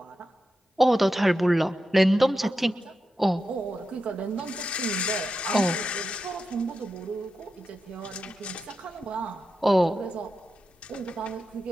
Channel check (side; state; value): both; normal; correlation 0.89